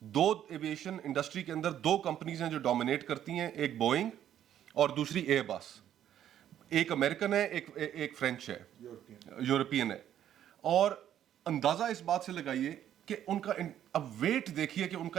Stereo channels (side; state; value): left; quieter; 10.7 dB